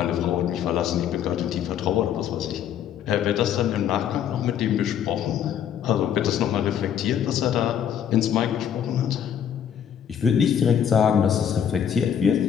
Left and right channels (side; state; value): right; quieter; 9.0 dB